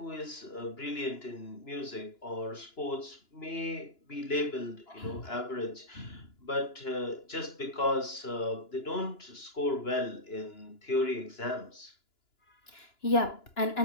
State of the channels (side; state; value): right; late; 2.9 ms